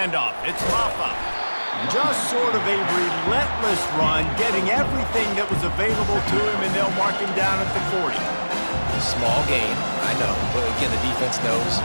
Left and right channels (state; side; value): inverted; both; correlation -1.00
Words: It's Rafa. Just sort of a relentless run, getting everything that was available to him, and they'll mark him down at the 40. Small gain, I know, but again, the defense knows